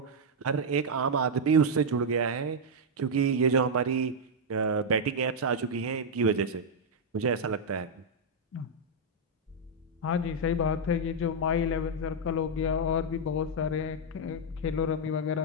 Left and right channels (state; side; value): normal; both; correlation -0.03